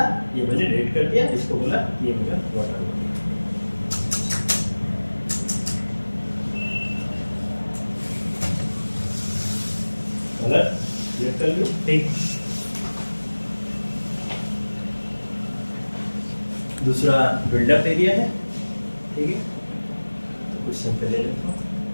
ये मैंने रेड कर दिया, इसको बोला ये मेरा वाटर बॉडी, कलर सिलेक्ट कर लो, ठीक। दूसरा बिल्डअप एरिया है, ठीक है। तो कुछ सैंपल ले लेता हूँ,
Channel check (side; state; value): both; inverted; correlation -1.00